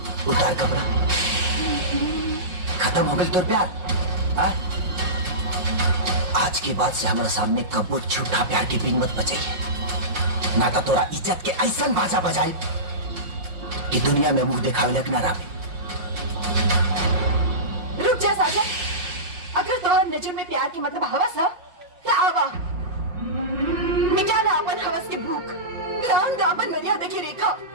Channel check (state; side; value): late; left; 5.5 ms